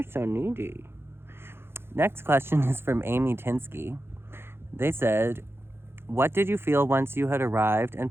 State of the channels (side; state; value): left; late; 0.11 ms